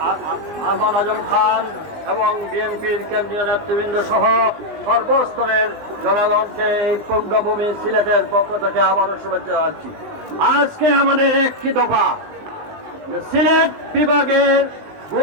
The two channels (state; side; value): late; left; 19 ms